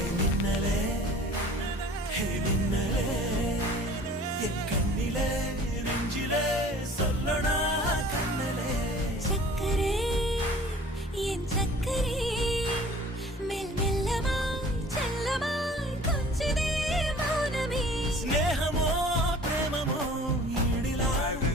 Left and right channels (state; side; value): normal; both; correlation 0.48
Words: கண்ணிலே நெஞ்சிலே சொல்லணும்